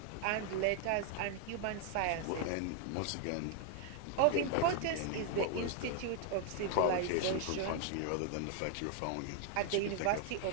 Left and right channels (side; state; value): both; different; correlation 0.00